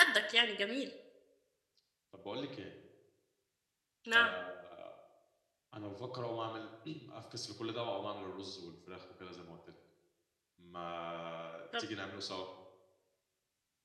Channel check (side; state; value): both; identical; correlation 1.00